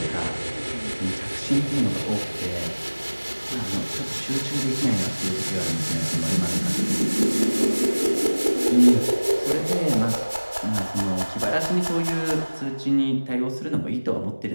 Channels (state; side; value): inverted; both; correlation -1.00